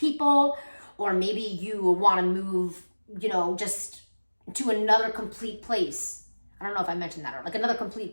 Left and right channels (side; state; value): both; inverted; correlation -1.00